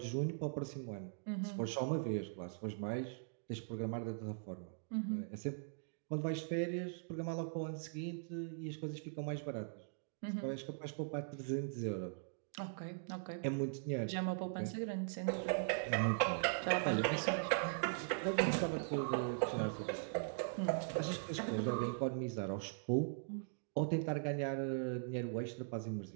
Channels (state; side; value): silent; left; digital silence